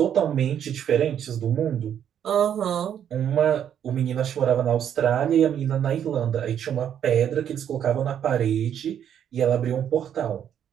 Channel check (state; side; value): quieter; left; 9.4 dB